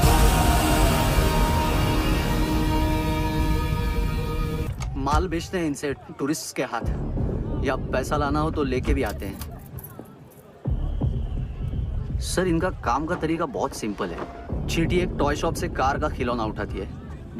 माल बेचते हैं इनसे टूरिस्ट के हाथ, या पैसा लाना हो तो लेके भी आते हैं। सर इनका काम का तरीका बहुत सिंपल है। चींटी एक टॉय शॉप से कार का खिलौना उठाती है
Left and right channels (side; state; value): both; identical; correlation 1.00